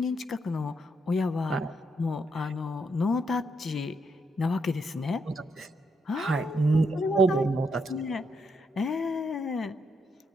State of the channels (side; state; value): both; normal; correlation 0.78